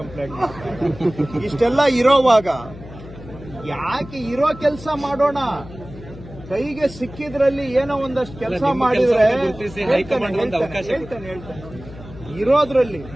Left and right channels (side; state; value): left; noise; hum, 16 dB below the sound